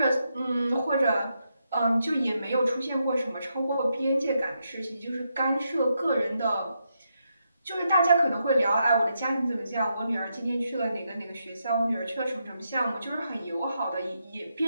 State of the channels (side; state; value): both; inverted; correlation -0.82